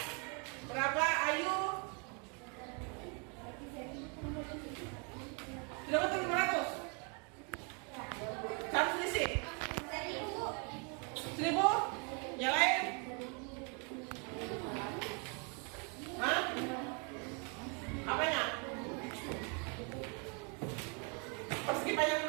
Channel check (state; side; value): quieter; left; 35.4 dB